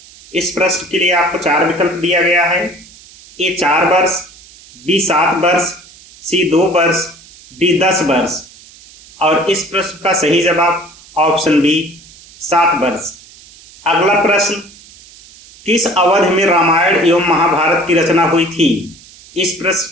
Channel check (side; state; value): right; noise; hiss, 23 dB below the sound